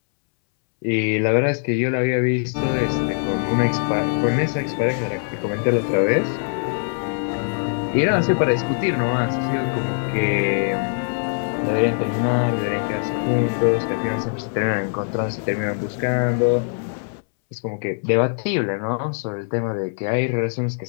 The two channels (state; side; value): silent; right; 64 dB below the other